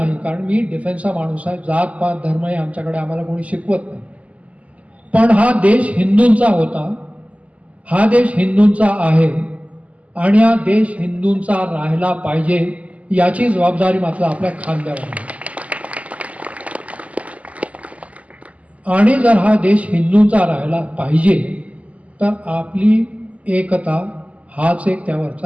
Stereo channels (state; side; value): late; left; 0.069 ms